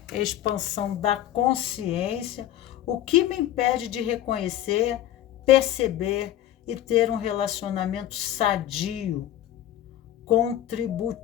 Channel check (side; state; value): right; quieter; 12.5 dB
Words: expansão da consciência. O que me impede de reconhecer, perceber e ter um relacionamento sadio,